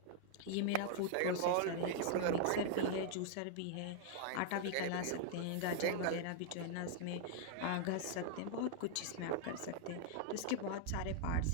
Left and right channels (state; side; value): different; both; correlation -0.01